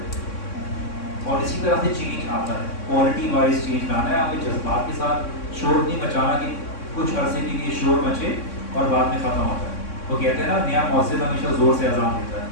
اور اسی طرح سے چینج آتا ہے. کوالٹی وائز چینج لانا ہے, ہمیں جذبات کے ساتھ شور نہیں مچانا کہ کچھ عرصے کے لیے شور مچے اور بعد میں ختم ہوتا ہے. وہ کہتے ہیں نا نیا مؤذن ہمیشہ زور سے اذان دیتا ہے.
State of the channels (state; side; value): late; right; 3.6 ms